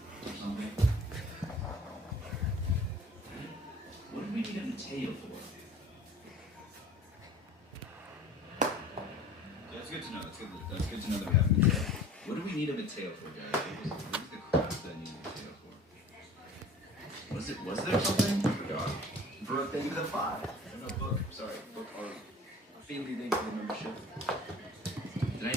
or something? What did we need a Mateo for? That's good to know. That's good to know that we have a Mateo. What do we need a Mateo for, guys? What was the crap that I need a Mateo for? Was there something? I forgot. Brooke, thank you for the 5. No, Book. Sorry, Book. Our family, thank you for the membership. Did I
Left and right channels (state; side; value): normal; both; correlation 0.45